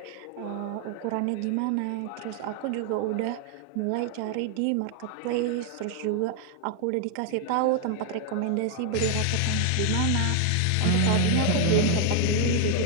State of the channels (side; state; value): both; different; correlation 0.00